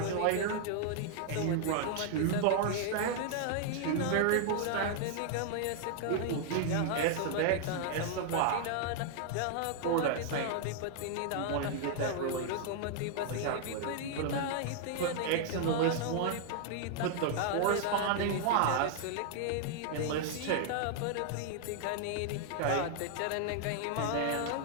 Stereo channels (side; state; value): both; different; correlation 0.00